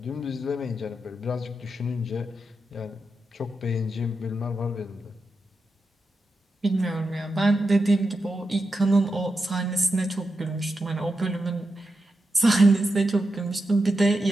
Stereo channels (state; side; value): normal; both; correlation 0.88